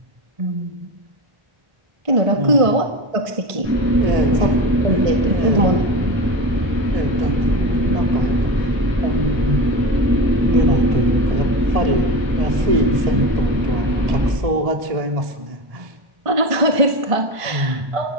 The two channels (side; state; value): left; late; 1.5 ms